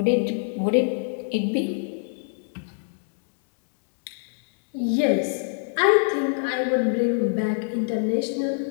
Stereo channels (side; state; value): right; silent; digital silence